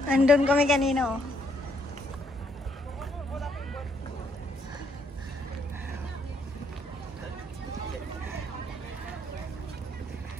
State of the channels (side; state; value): both; normal; correlation 0.71